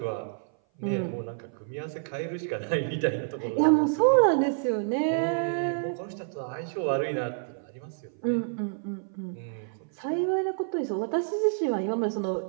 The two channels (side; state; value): left; silent; 56 dB below the other